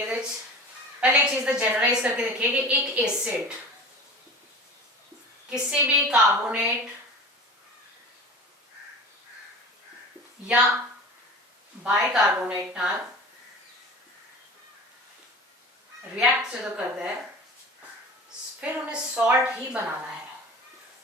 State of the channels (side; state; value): both; normal; correlation 0.37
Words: पहले एक चीज तो जनरलाइज करके देखिए कि एक एसिड किसी भी कार्बोनेट या बाइकार्बोनेट नाल रिएक्ट जो करता है फिर उन्हें सॉल्ट ही बनाना है,